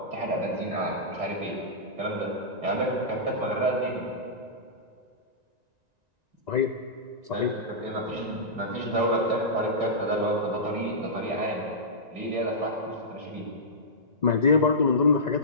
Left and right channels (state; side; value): late; left; 1.9 ms